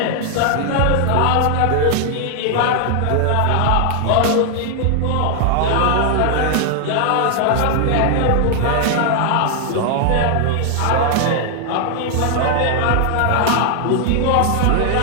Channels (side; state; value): both; different; correlation 0.00